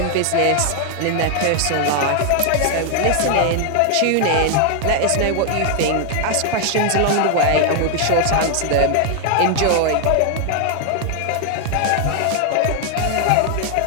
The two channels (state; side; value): different; both; correlation 0.00